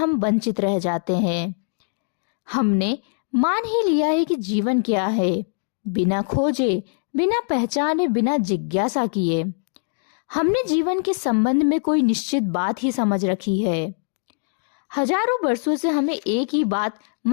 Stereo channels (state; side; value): silent; right; 61 dB below the other